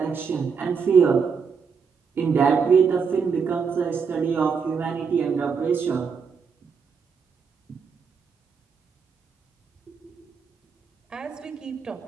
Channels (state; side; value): quieter; left; 5.9 dB